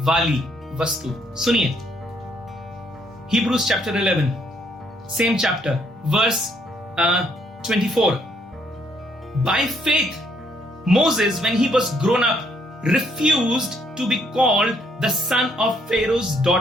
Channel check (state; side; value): normal; both; correlation 0.70